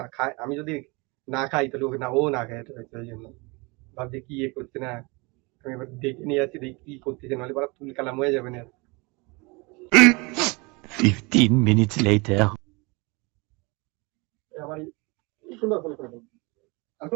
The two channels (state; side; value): quieter; left; 27.3 dB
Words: খায়, আমি যদি না খাই তাহলে ও না খায় রয়েছে। ওই জন্য ভাবছি কি করছে না, আমি এবার দেখে নিয়ে আসছি, দেখি কি করতেছে, নাহলে বড় তুল কালাম হয়ে যাবে না। 15 minutes later আমার সুন্দর ফোন করে দেবো। আর